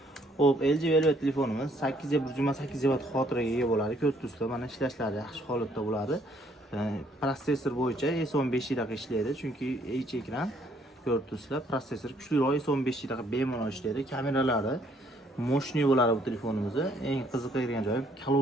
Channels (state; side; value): normal; both; correlation 0.66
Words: Xo'p, LG Velvet telefonimiz 828 GB xotiraga ega bo'ladi. Ko'rib turibsizlar, mana ishlashlari yaxshi holatda bo'ladi. Protsessor bo'yicha S15 yilga ishlaydi, chunki HD ekran. Ko'rib turibsizlar, protsessor kuchliroq S15 yilga bemalol ishlaydi. Kameralari moshniy bo'ladi bu telefonimizni. Eng qiziqadigan joyi